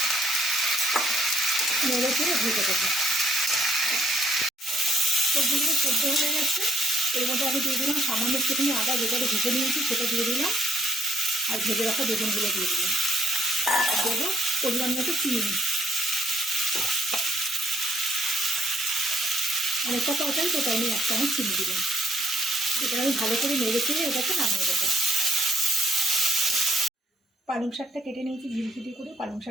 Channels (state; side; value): normal; both; correlation 0.69